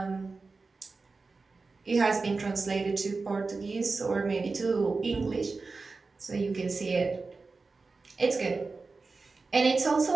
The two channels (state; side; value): quieter; left; 4.0 dB